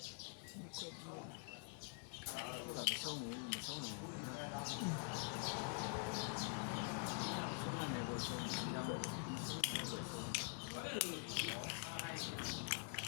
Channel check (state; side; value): quieter; right; 39.9 dB